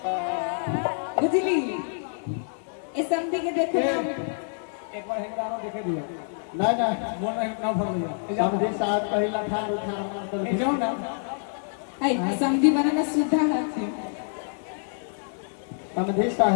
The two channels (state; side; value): silent; right; digital silence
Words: बुझली? ए समझी के देखो एक बार हेंगारो देखे दिया ना ना मोर में ना भर लिया। समधी साहब कहिला ठार उठार ए जाओ ना आई समझी बनाना सुधा हाथ है। समधी